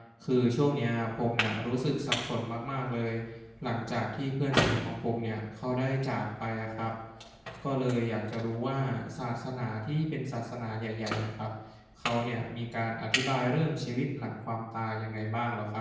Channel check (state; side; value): identical; both; correlation 1.00